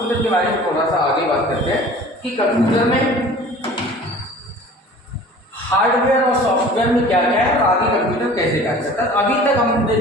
के बारे में थोड़ा सा आगे बात करते हैं कि कंप्यूटर में हार्डवेयर और सॉफ्टवेयर में क्या क्या है और आगे कंप्यूटर कैसे कार्य करता है। अभी तक हमने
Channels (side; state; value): both; normal; correlation 0.45